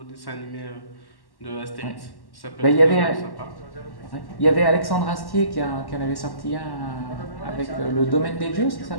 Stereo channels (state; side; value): late; right; 1.1 ms